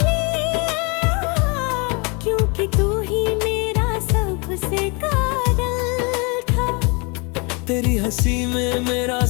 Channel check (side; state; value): right; quieter; 30.9 dB